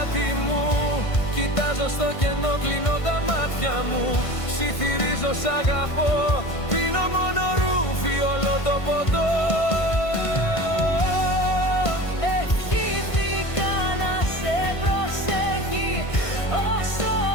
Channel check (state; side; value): late; right; 1.5 ms